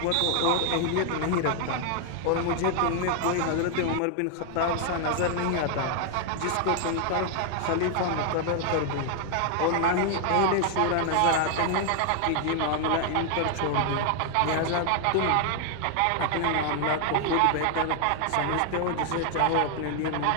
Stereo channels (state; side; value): different; both; correlation 0.00